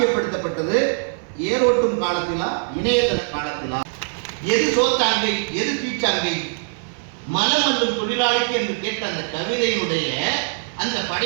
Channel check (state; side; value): silent; left; digital silence